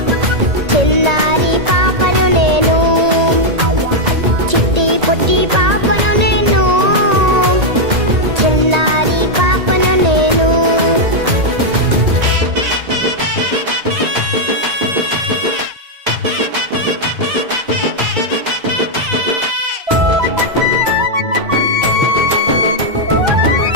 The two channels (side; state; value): left; late; 2.1 ms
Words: చిన్నారి పాపను నేను, చిట్టి పొట్టి పాపను నేను, చిన్నారి పాపను నేను.